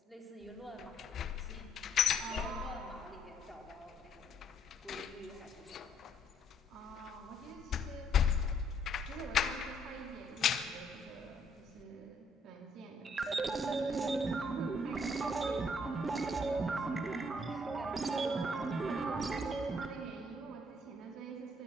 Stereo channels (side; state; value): both; normal; correlation 0.68